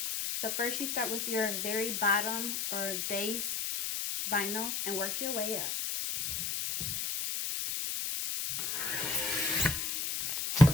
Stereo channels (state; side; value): noise; left; hiss, 2 dB below the sound